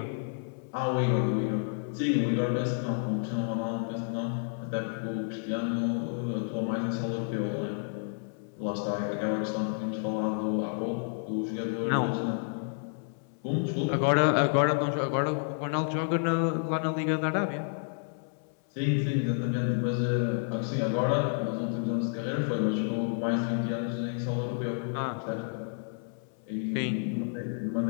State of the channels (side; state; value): right; silent; 58 dB below the other